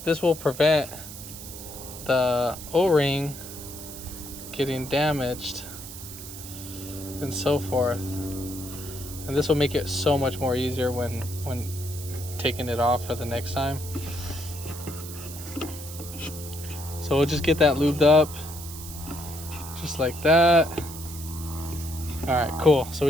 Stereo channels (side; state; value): right; noise; hiss, 12 dB below the sound